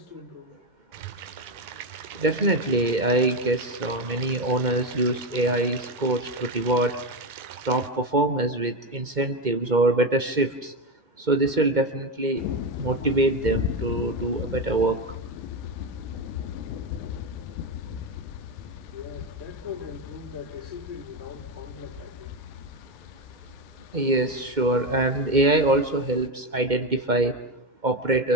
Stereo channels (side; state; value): left; late; 2.1 ms